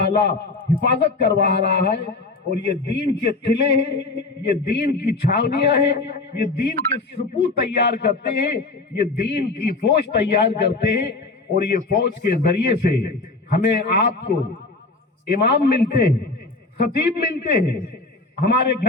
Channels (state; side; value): quieter; right; 3.5 dB